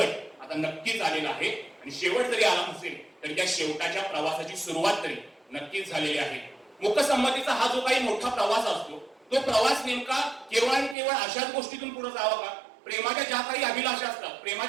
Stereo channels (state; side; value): drops out; left; at 11.0 s